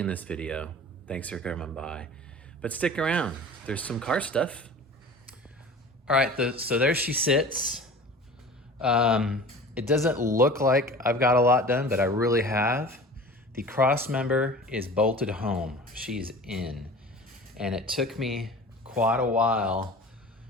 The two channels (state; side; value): normal; both; correlation 0.40